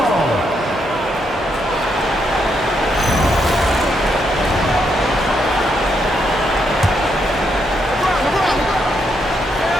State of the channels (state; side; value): normal; both; correlation 0.78